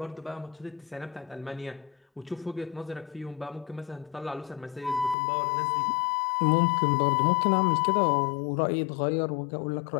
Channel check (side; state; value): right; drops out; at 5.2 s